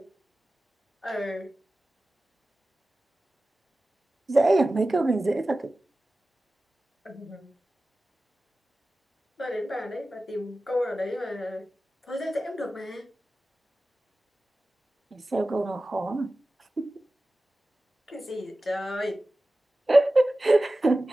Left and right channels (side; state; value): both; normal; correlation 0.96